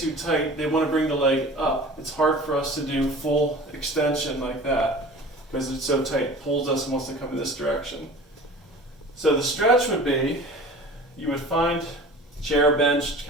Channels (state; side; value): normal; both; correlation 0.41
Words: tight, they want to bring the leg up. It's hard for us to do full extension like that because it's so tight, it pulls us and wants to come in this direction. So the stretch would be, you would find chair, bench,